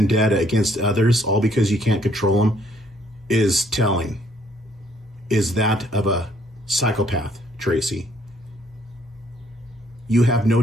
against others, all because you can't control them, is telling. Is that of a psychopath, Tracy. You have no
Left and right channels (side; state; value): both; normal; correlation 0.66